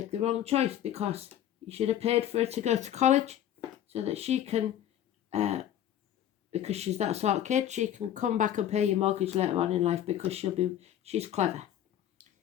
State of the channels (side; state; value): right; quieter; 11.1 dB